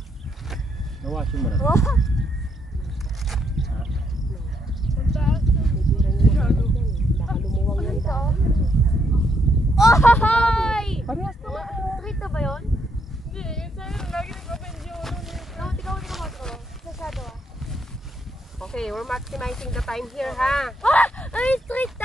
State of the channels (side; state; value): both; normal; correlation 0.75